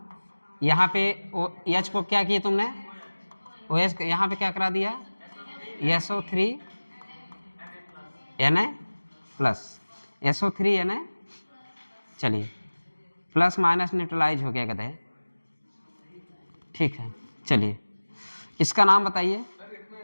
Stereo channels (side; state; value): both; inverted; correlation -1.00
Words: यहाँ पे H को क्या किया तुमने, OH यहाँ पे क्या करा दिया, SO3Na प्लस, SO3Na, चलिए प्लस माइनस न्यूट्रलाइज हो गया कहते हैं, ठीक है। चलिए इसका नाम बताइए,